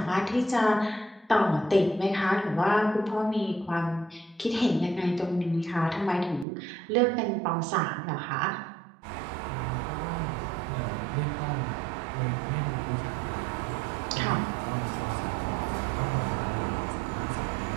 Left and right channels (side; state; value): left; drops out; at 6.5 s